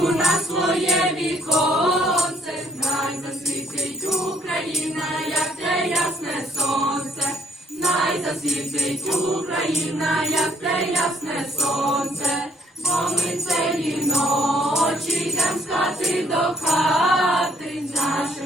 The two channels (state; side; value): normal; both; correlation 0.67